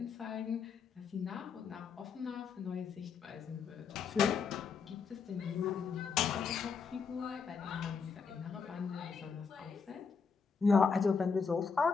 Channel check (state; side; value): quieter; right; 5.6 dB